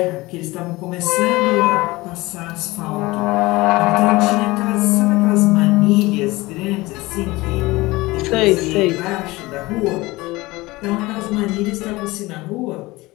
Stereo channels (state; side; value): quieter; right; 20.8 dB